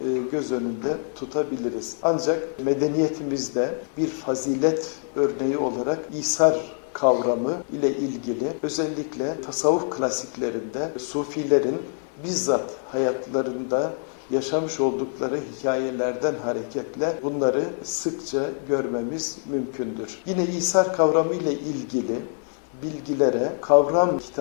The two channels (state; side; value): silent; right; 59 dB below the other